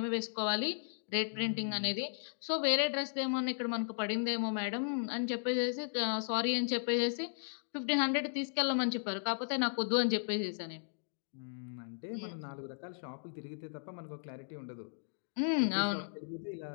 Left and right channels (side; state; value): right; silent; digital silence